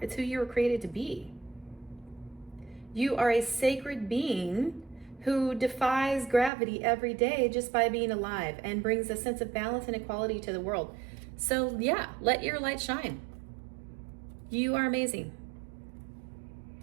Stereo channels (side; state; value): left; drops out; at 6.5 s